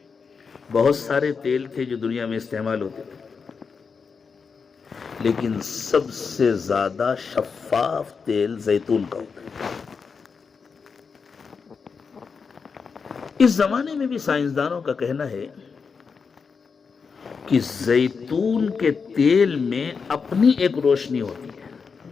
بہت سارے تیل تھے جو دنیا میں استعمال ہوتے تھے، لیکن سب سے زیادہ شفاف تیل زیتون کا ہوتا ہے۔ اس زمانے میں بھی سائنسدانوں کا کہنا ہے کہ زیتون کے تیل میں اپنی ایک روشنی ہوتی ہے،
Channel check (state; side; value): quieter; right; 5.5 dB